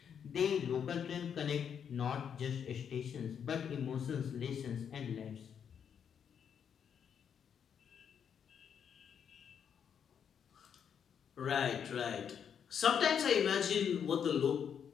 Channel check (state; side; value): quieter; right; 7.8 dB